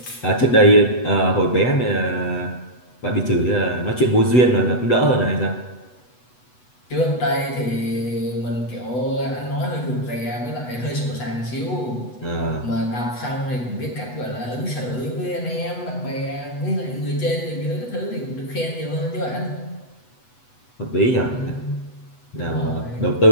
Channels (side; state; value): right; late; 8.1 ms